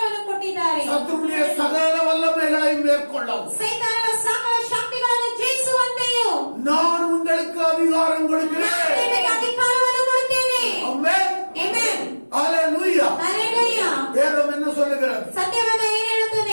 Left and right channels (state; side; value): inverted; both; correlation -1.00